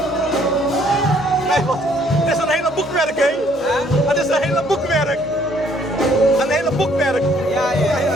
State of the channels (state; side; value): normal; both; correlation 0.63